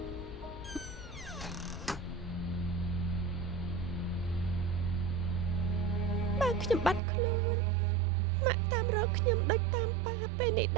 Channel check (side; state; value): left; drops out; at 7.0 s